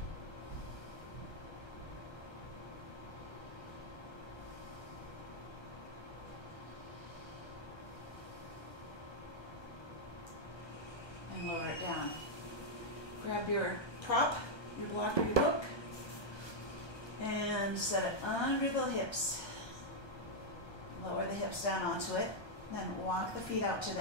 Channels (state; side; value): late; right; 1.3 ms